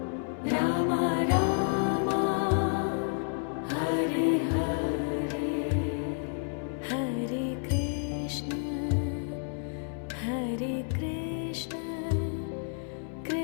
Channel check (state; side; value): silent; right; 58 dB below the other